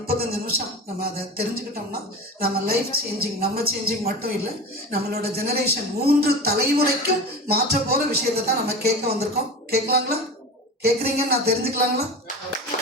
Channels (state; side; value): normal; both; correlation 0.30